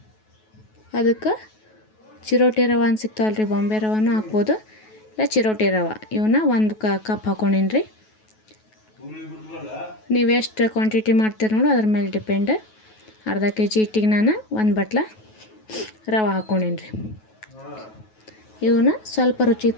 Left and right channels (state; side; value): late; right; 9.3 ms